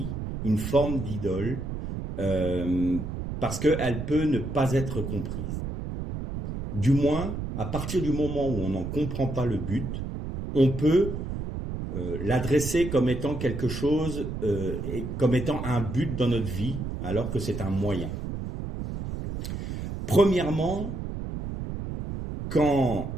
une forme d'idole, parce qu'elle peut ne pas être comprise. Du moins, à partir du moment où on n'en comprend pas le but, on peut l'adresser comme étant quelque chose, comme étant un but dans notre vie, alors que c'est un moyen. Premièrement,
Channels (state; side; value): noise; right; rumble, 5 dB below the sound